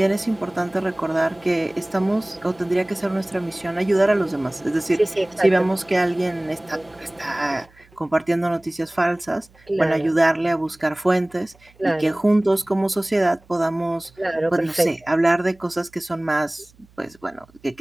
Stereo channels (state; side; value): noise; right; hum, 29 dB below the sound